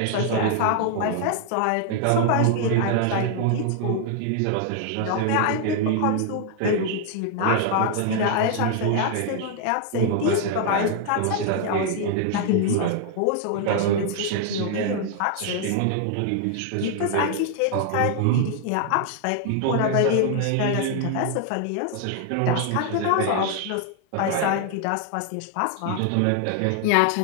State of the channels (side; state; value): both; different; correlation 0.00